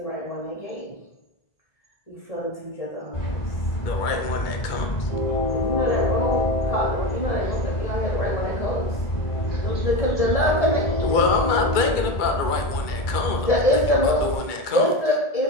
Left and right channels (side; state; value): right; late; 2.2 ms